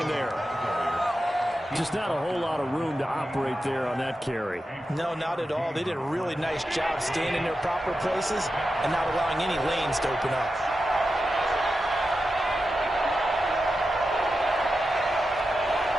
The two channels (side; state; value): both; normal; correlation 0.90